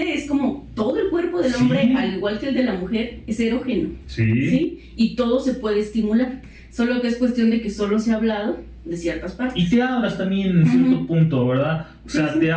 es como todo el cuerpo del hombre, al igual que el de la mujer, es erógeno. ¿Sí? Y todo se puede estimular. Solo que es cuestión de que solo se ha hablado de ciertas partes. Y te abras también en cierto punto, ¿verdad? O sea, te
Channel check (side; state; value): both; identical; correlation 1.00